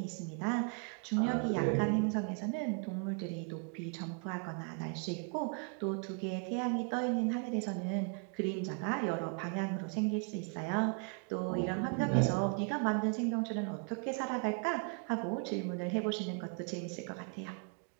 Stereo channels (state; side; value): quieter; left; 37.8 dB